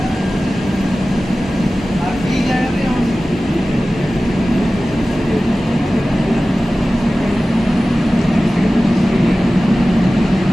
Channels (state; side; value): normal; both; correlation 0.96